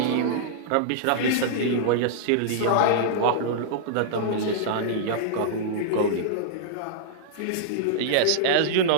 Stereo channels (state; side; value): different; both; correlation -0.02